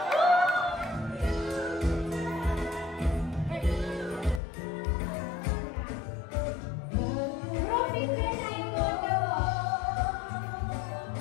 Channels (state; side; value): drops out; right; at 4.4 s